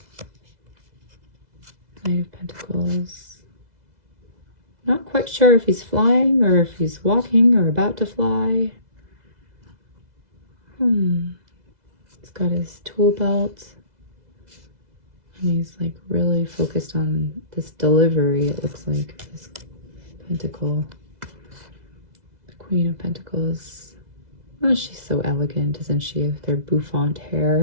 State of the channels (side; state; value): left; late; 2.0 ms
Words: Knight of Pentacles. Not quite sure if he's flying or if he's walking or about to fly. He's got his tool belt. And he's like really focused on this delivery, it looks like, this pentacle. The Queen of Pentacles. Oh, she's so elegant, isn't she? With her bouffant